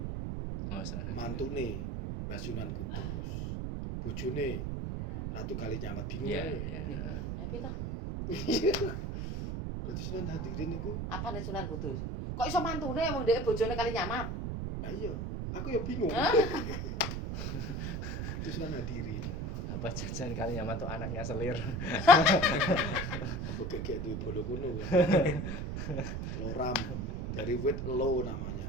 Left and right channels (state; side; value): noise; right; rumble, 3 dB below the sound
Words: Oh, senang. Mantune Mbah Sunan Kudus. Bojone Ratu Kalinyamat bingung Iya, ae. iya. Tapi toh, Berarti Sunan Hadirin itu apa nih Sunan Kudus? Kok iso mantune wong dhek bojone kali nyamat? ayo, aku ya bingung. Hah? Itu Sunan Hadirin. Apa jajan kali nyama tuh anaknya selir. Apa gegek duwe bolo kuno kan. Loram. Dari wit lo